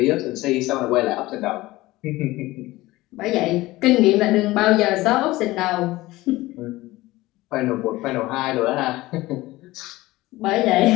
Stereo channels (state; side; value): quieter; right; 18.7 dB